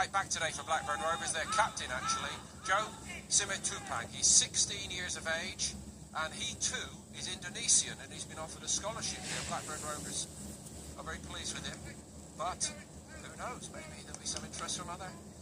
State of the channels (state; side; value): identical; both; correlation 1.00